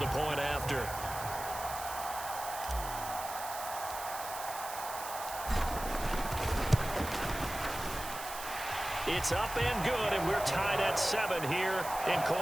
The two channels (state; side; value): noise; right; hiss, 10 dB below the sound